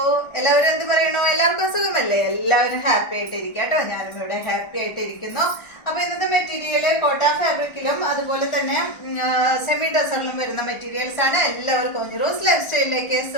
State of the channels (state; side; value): late; right; 1.4 ms